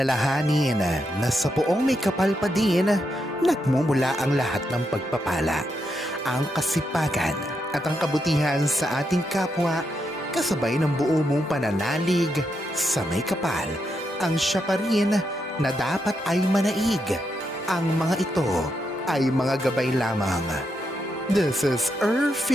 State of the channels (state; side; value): normal; both; correlation 0.82